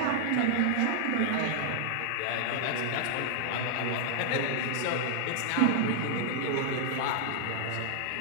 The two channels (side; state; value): both; different; correlation 0.00